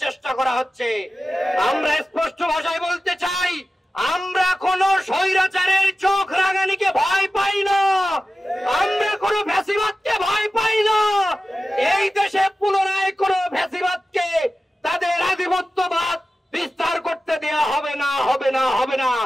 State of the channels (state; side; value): normal; both; correlation 0.95